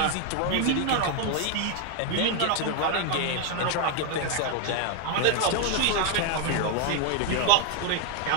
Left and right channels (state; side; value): different; both; correlation 0.01